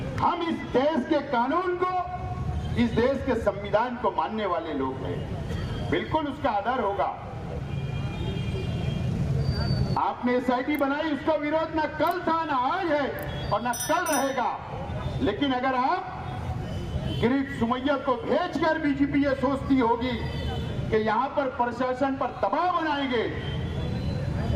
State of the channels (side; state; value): both; identical; correlation 1.00